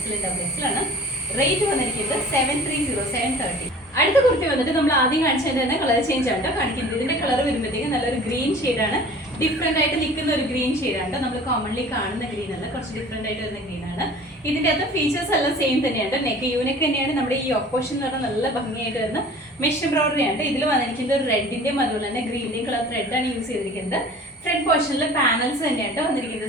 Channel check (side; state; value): both; normal; correlation 0.45